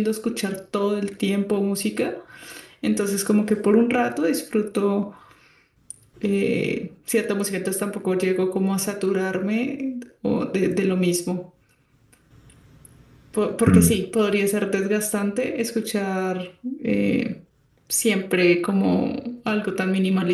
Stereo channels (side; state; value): both; identical; correlation 1.00